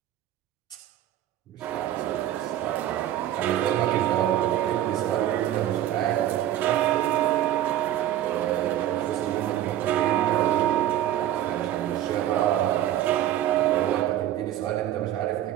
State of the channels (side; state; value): left; quieter; 12.4 dB